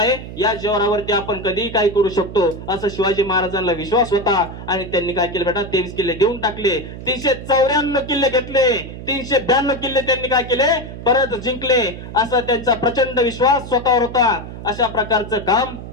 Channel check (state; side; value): noise; right; hum, 11 dB below the sound